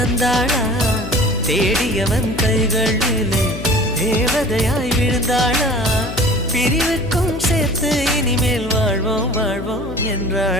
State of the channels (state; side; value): noise; left; hum, 9 dB below the sound